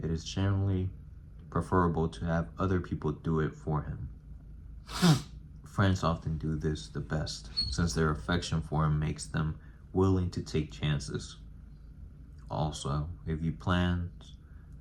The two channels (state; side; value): identical; both; correlation 1.00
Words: it is generally preferable to have other people do it for him. Friends often do this the best, since their affection for him makes them willing to take chances. Also, if your plans